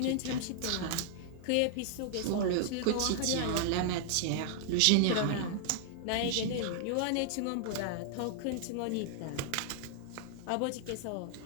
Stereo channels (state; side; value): different; both; correlation -0.01